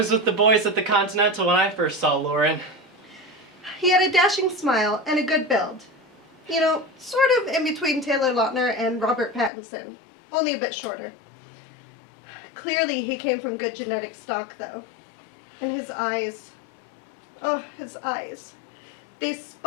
with the boys at the Continental when I first saw Lauren. He had a dashing smile and a good build. You know, sort of in between Taylor Lautner and Robert Pattinson, only a bit shorter. Clearly he came from good genetic stock, though. And his eyes, oh, his eyes. They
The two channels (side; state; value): right; drops out; at 9.5 s